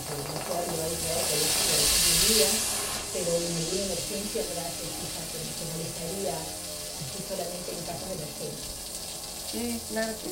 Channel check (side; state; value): both; identical; correlation 1.00